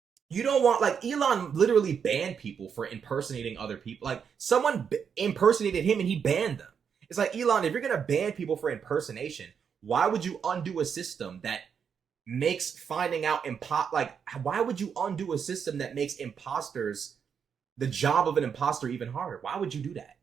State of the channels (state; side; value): quieter; left; 7.0 dB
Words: You don't want, like, Elon literally banned people for impersonating other people. Like, someone impersonated him and he banned them. It's like, Elon, if you're going to ban people for impersonation, why would you undo a system that makes finding out why would you undo a system that makes the job of an imposter even harder? Why would you do that?